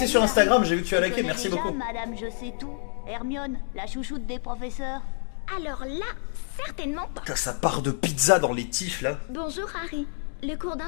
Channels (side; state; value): right; silent; digital silence